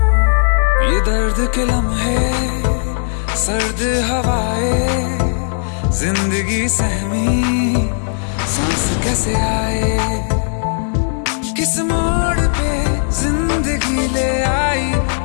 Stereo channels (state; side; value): silent; right; 55 dB below the other